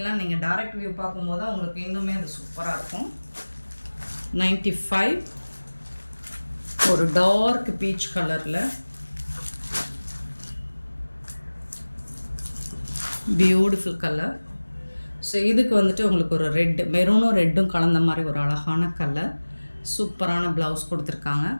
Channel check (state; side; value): inverted; both; correlation -1.00